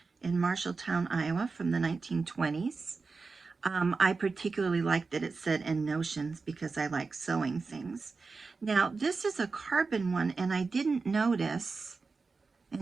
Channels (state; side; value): quieter; left; 4.3 dB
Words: in Marshalltown, Iowa from the 1920s. I particularly liked that it said "and notions" because I like sewing things. Now, this is a carbon one, and I didn't notice